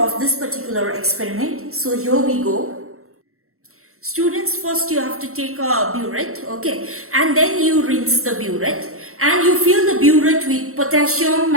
this particular experiment. So here we go. Students, first you have to take a burette, okay, and then you rinse the burette and you fill the burette with potassium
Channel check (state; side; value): late; left; 0.63 ms